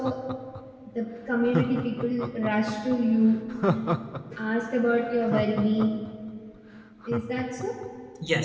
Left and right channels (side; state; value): both; identical; correlation 1.00